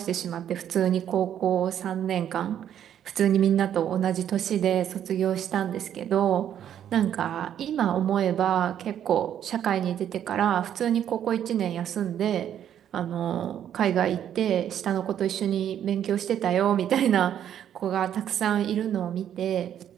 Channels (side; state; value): left; quieter; 10.0 dB